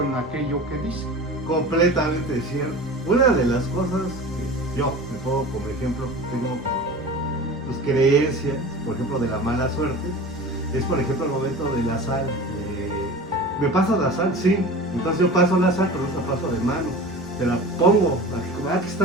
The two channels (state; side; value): normal; both; correlation 0.36